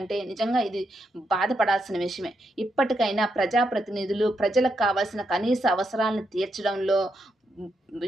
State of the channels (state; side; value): normal; both; correlation 0.81